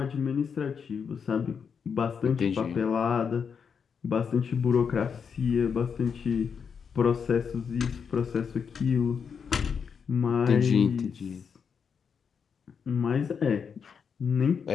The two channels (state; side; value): quieter; right; 6.5 dB